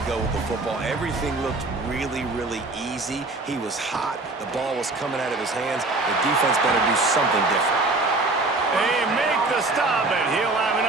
go with the football. Everything looked really, really easy. He was hot. The ball was coming out of his hands. The defense better do something different. They make the stop, and he'll have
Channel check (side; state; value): left; quieter; 3.2 dB